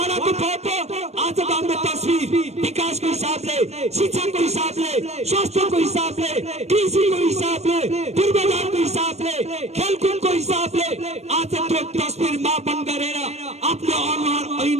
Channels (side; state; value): left; late; 0.31 ms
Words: फोटो, आजको हाम्रो तस्बिर विकासको हिसाबले, शिक्षाको हिसाबले, स्वास्थ्यको हिसाबले, कृषिको हिसाबले, पूर्वाधारको हिसाबले, खेलकुदको हिसाबले आज त्यो तस्बिर मापन गरेर आफ्नो अनुहार